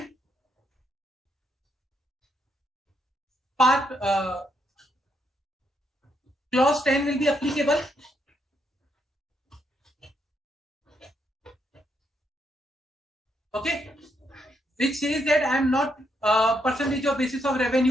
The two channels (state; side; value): normal; both; correlation 0.77